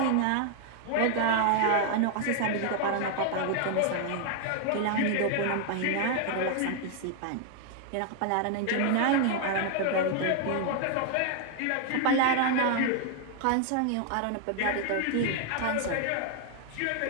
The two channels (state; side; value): different; both; correlation 0.00